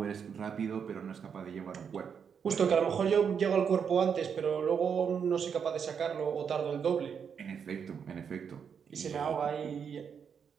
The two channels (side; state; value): left; quieter; 7.0 dB